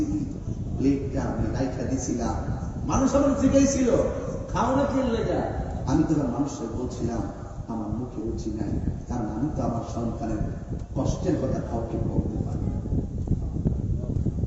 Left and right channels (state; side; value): identical; both; correlation 1.00